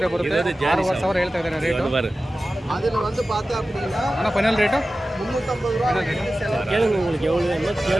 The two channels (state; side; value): normal; both; correlation 0.95